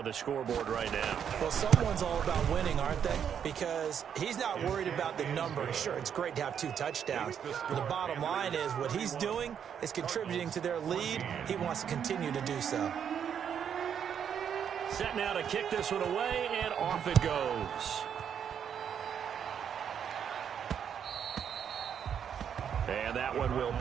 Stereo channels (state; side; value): quieter; left; 8.2 dB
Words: the scoreboard right now. Well, someone's all about winning, aren't they? Because he's not worried about the number. Sure, it's great to have 2 touchdowns. But the bottom line is what he's doing is contributing to their lead. He wants to continue to do so. Set now to kick this one away, and off it goes. And that one will